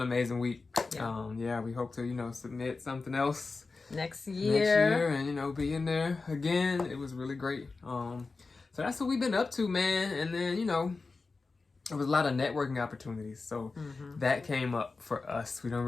amazing week. Yeah. We hope to submit something else next year and be in there again. It was really great. So that's what we've been up to, man. And then there was a lot of networking opportunities. So that came up for us. We don't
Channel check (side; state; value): right; quieter; 4.0 dB